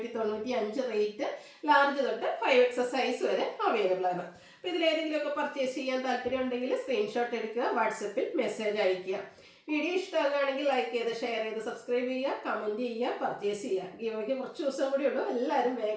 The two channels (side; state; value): both; identical; correlation 1.00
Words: റേറ്റ്. ലാർജ് തൊട്ട് 5X സൈസ് വരെ അവൈലബിൾ ആണ്. അപ്പോൾ ഇതിലേതെങ്കിലുമൊക്കെ പർച്ചേസ് ചെയ്യാൻ താല്പര്യം ഉണ്ടെങ്കിൽ സ്ക്രീൻഷോട്ട് എടുക്കുക, വാട്സപ്പിൽ മെസ്സേജ് അയയ്ക്കുക. വീഡിയോ ഇഷ്ടമാകുകയാണെങ്കിൽ ലൈക്ക് ചെയ്ത് ഷെയർ ചെയ്ത് സബ്സ്ക്രൈബ് ചെയ്യുക, കമൻറ്റ് ചെയ്യുക, പർച്ചേസ് ചെയ്യുക. ഗീവയ്ക്ക് കുറച്ച് ദിവസം കൂടി ഉള്ളൂ. എല്ലാവരും